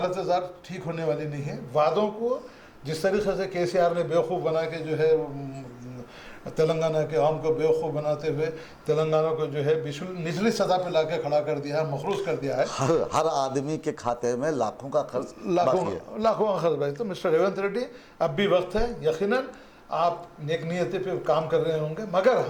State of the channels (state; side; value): identical; both; correlation 1.00